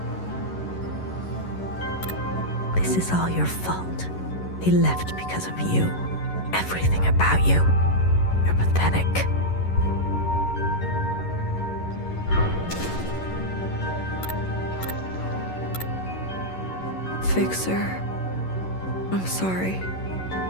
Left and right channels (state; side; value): late; right; 11 ms